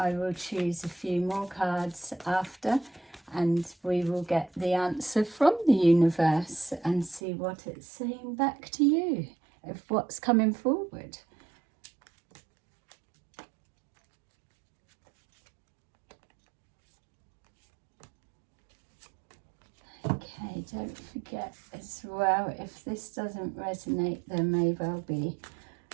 will choose a few more cards after and we will get the answer from the universe and see what it's saying back to you of what's coming forward. Okay, don't forget as well, if this doesn't resonate, there may well be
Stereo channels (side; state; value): left; drops out; at 7.2 s